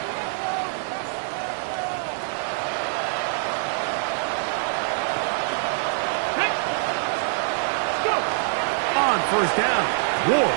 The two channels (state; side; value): silent; left; digital silence